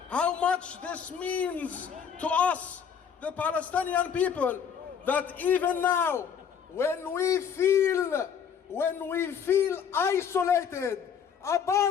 how much this means to us, the Palestinian people, that even now, when we feel isolated,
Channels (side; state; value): right; quieter; 7.5 dB